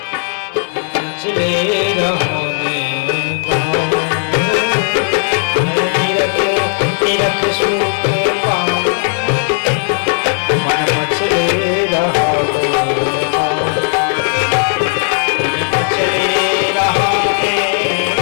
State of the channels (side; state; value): right; silent; 70 dB below the other